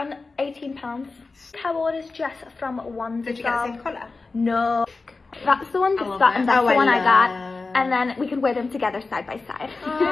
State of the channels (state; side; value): quieter; right; 3.9 dB